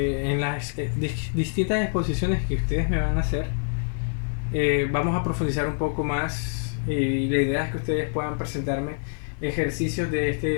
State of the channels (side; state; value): right; silent; digital silence